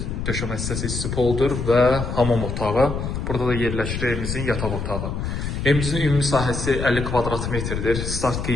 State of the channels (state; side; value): noise; left; rumble, 4 dB below the sound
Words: döşəmə hissəsi isti poldur və hamam otağı. Burada da yerləşir evimizin yataq otağı. Evimizin ümumi sahəsi 50 kvadrat metrdir. Start